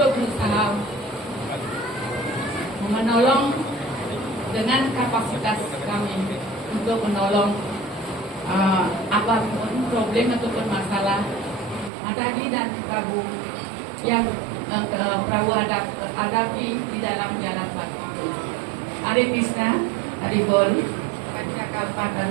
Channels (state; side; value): drops out; left; at 11.9 s